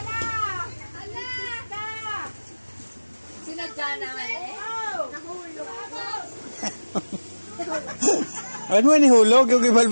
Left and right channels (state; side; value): inverted; both; correlation -1.00